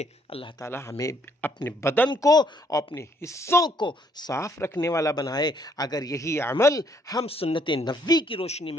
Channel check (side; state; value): both; normal; correlation 0.67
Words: اللہ تعالی ہمیں اپنے بدن کو اور اپنے حصوں کو صاف رکھنے والا بنائے۔ اگر یہی عمل ہم سنت نبوی کی روشنی